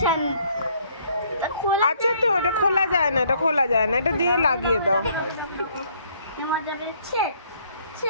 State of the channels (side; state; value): both; inverted; correlation -0.64